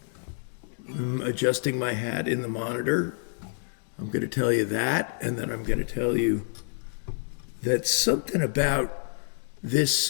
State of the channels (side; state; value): right; silent; digital silence